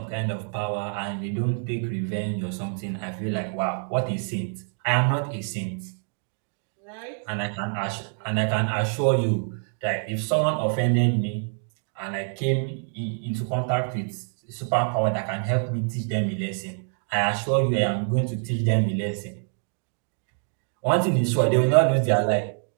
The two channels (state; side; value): silent; left; 56 dB below the other